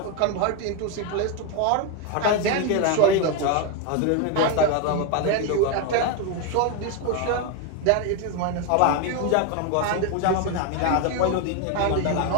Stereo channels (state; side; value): different; both; correlation 0.02